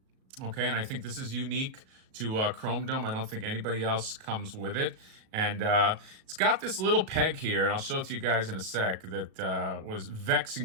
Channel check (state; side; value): late; left; 37 ms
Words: Okay, and I think this is unique to Chrome Dome. I don't think anybody else comes with it. And it's got this little peg here, and I'll show it to you guys in a sec, that was